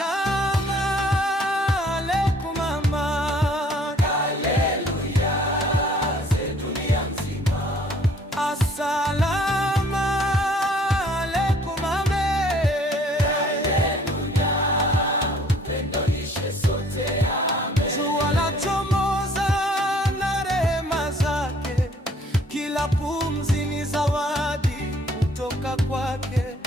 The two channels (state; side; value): normal; both; correlation 0.58